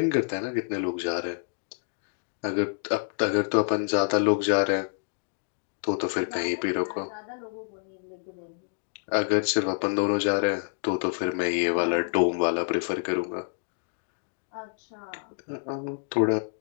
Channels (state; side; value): silent; right; digital silence